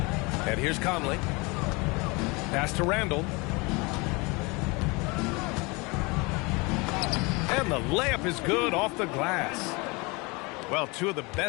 And here's Conley. Pass to Randall. And the layup is good off the glass. Well, two of the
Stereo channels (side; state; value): right; quieter; 26.9 dB